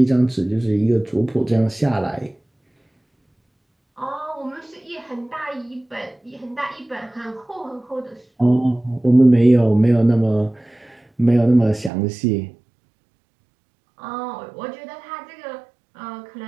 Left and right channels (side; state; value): left; drops out; at 11.9 s